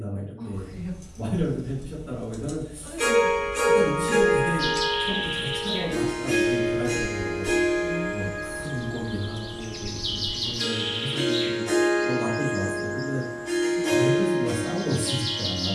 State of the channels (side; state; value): both; identical; correlation 1.00